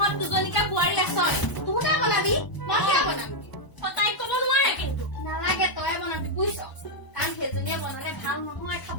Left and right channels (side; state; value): right; late; 1.0 ms